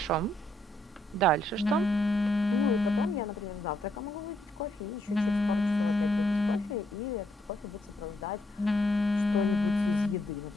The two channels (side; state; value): both; normal; correlation 0.74